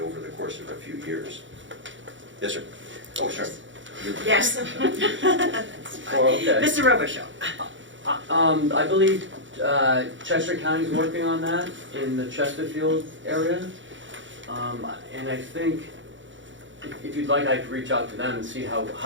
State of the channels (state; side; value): late; left; 0.55 ms